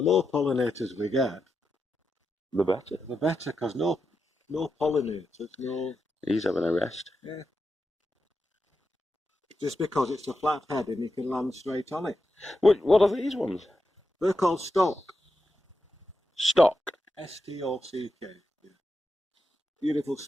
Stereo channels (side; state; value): both; normal; correlation 0.88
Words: more pollinators we get, The better. the better, because no pollinators, no... He's having a rest. Yeah. Just because it's a flat head and you can land straight on it. What are these ones? They're called stock. Stock. S-T-O-C-K. Yeah. Beautiful